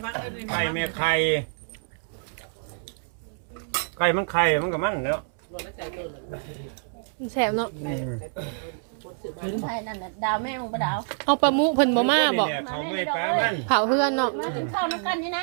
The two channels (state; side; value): silent; left; 61 dB below the other